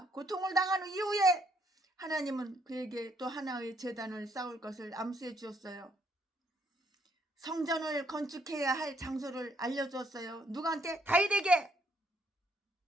고통을 당한 이후에 하나님은 그에게 또 하나의 제단을 쌓을 것을 암시해 주었어요. 성전을 건축해야 할 장소를 알려주었어요. 누구한테? 다윗에게.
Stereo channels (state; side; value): normal; both; correlation 0.70